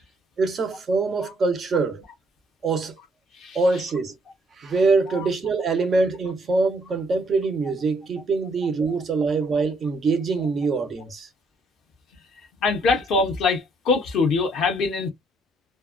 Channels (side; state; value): both; normal; correlation 0.68